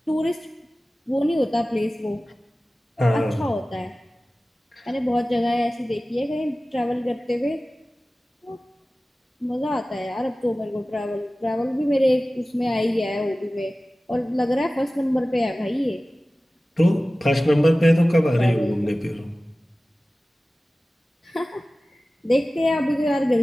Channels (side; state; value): both; normal; correlation 0.97